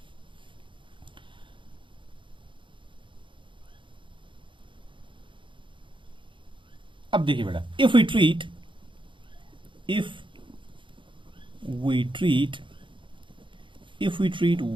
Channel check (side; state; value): left; late; 0.24 ms